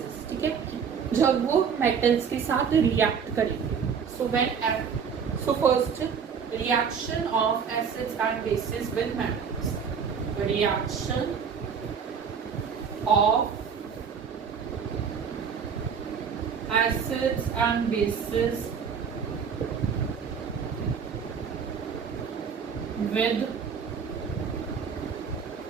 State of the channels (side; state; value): left; quieter; 6.6 dB